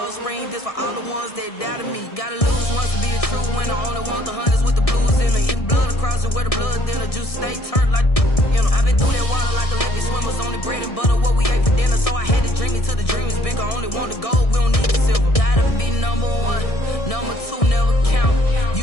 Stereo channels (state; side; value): late; right; 1.6 ms